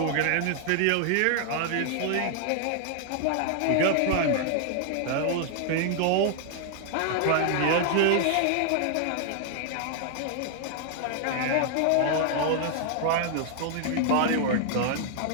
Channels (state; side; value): different; both; correlation 0.00